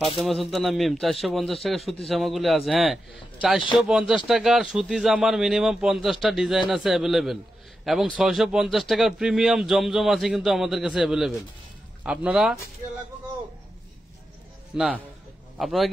সুলতানা মিম 450 টাকা সুতি জামাগুলি আছে। হ্যাঁ 450 টাকার সুতি জামার মিনিমাম 50টা ডিজাইন আছে অ্যাভেলেবেল, এবং 650 টাকার প্রিমিয়াম জমজম আছে কিন্তু আমাদের কাছে অ্যাভেলেবেল। আপনারা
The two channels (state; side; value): normal; both; correlation 0.89